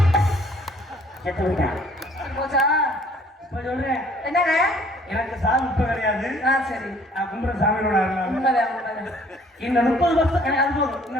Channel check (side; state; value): both; normal; correlation 0.58